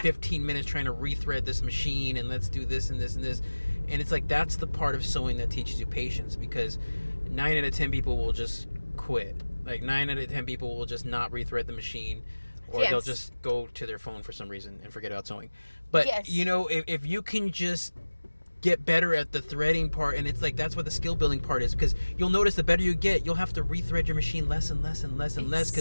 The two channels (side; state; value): both; inverted; correlation -1.00